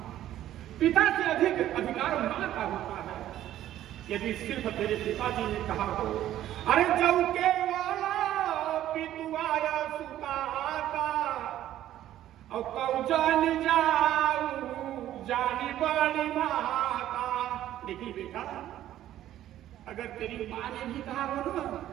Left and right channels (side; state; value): left; quieter; 12.7 dB